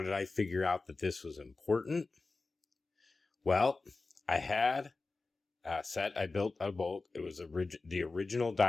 I figure out that this was important? Well, I had a set I built out of bulk. It was the original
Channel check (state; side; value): quieter; right; 3.7 dB